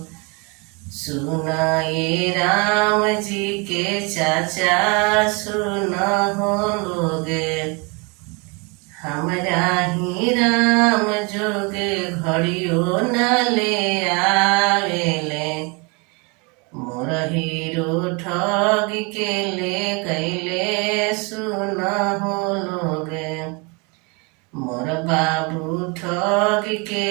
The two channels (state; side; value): quieter; left; 30.7 dB